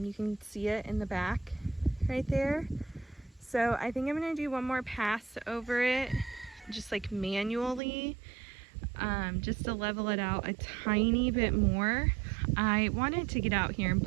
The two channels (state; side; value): drops out; left; at 7.8 s